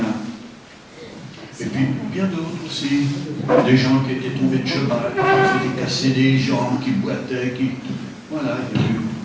Et puis, bien d'autres aussi. Des gens qui étaient tombés de cheval, qui s'étaient cassés des jambes, qui boitaient, qui... Voilà,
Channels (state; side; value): identical; both; correlation 1.00